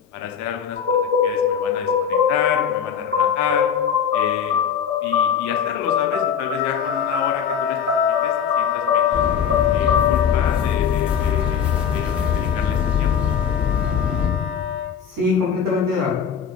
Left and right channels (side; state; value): right; quieter; 7.7 dB